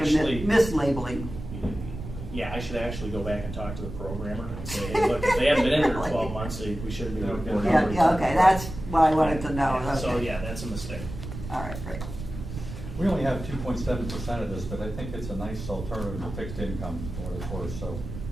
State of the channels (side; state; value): right; noise; rumble, 9 dB below the sound